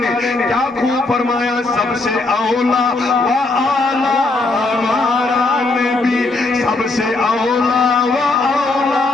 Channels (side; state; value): right; quieter; 3.2 dB